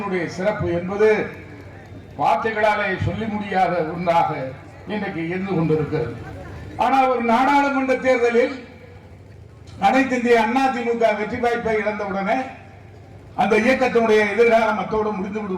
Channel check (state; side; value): identical; both; correlation 1.00